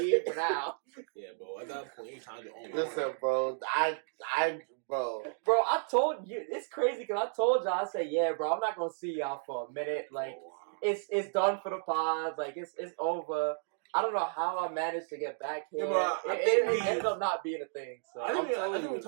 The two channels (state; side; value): silent; left; digital silence